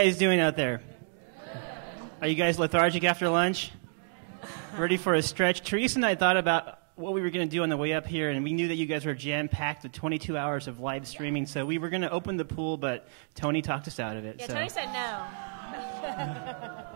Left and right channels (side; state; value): left; silent; 58 dB below the other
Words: doing out there? Are you guys lethargic after lunch? Ready for a stretch? Theresa and I thought about what we were going to do on the way up here, and we knew that you guys were jam-packed with 22 hours of live streaming, so we were going to open the pool, but Tony talked us out of it. Yeah, so. Tony said no.